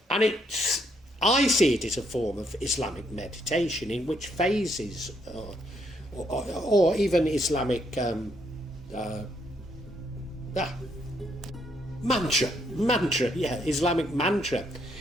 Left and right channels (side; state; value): both; normal; correlation 0.73